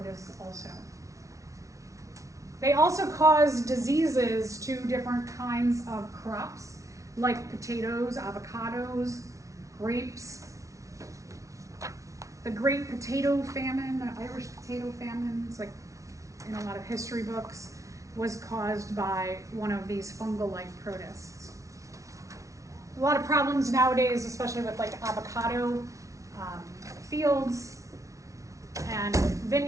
also. They also cause diseases to different kinds of crops, like potatoes, avocados, grapes. The Great Potato Famine, the Irish potato famine, it's like in a lot of history books, was caused by one of these fungal-like protists. A lot of problems nowadays, especially with like avocado fields and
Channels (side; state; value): left; late; 0.15 ms